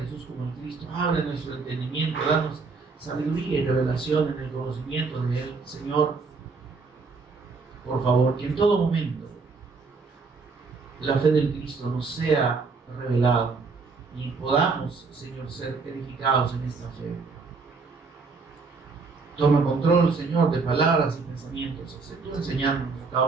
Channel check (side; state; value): left; quieter; 4.4 dB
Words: como el Cristo, abre nuestro entendimiento, danos sabiduría y revelación en el conocimiento de Él, Señor. Por favor, que en todo momento la fe del Cristo nos sea revelada y podamos, Señor, ser edificados en esta fe. Toma control, Señor, de palabras y pensamientos, tú enseñándonos a cada